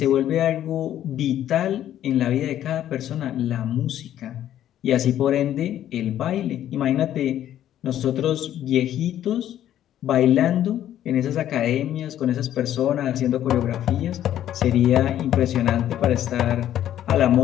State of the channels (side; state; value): right; quieter; 11.6 dB